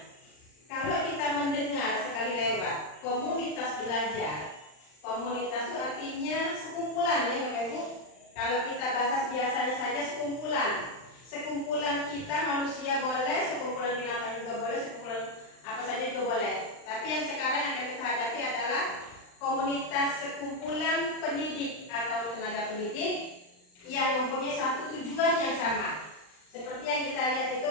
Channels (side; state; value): right; late; 39 ms